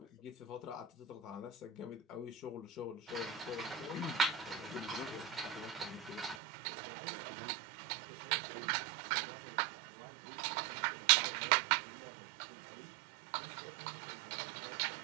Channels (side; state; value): left; drops out; at 6.4 s